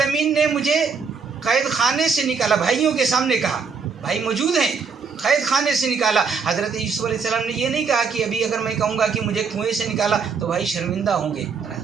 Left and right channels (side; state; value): left; quieter; 5.5 dB